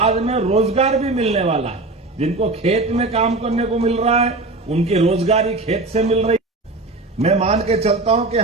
में रोजगार भी मिलने वाला है। जिनको खेत में काम करने को मिल रहा है उनकी रोजगारी खेत से मिल रही है। मैं मान के चलता हूं कि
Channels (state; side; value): quieter; left; 3.2 dB